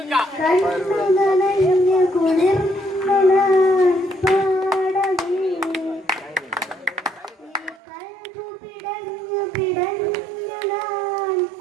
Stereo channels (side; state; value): left; drops out; at 7.8 s